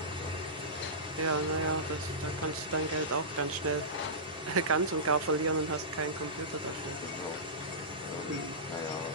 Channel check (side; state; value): both; normal; correlation -0.18